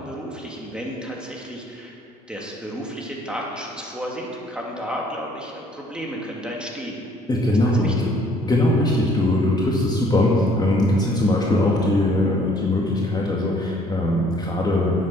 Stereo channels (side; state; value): both; normal; correlation 0.60